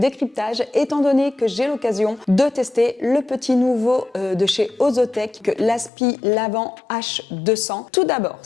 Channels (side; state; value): right; drops out; at 5.9 s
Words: étant donné que j'ai l'occasion de tester le petit nouveau de chez Ozotech, l'Aspi Lavant H200. Tout d'abord,